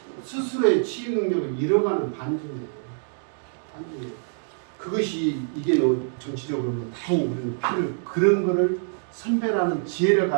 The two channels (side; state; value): left; silent; digital silence